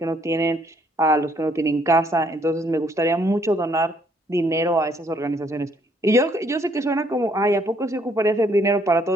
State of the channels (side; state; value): both; normal; correlation 0.67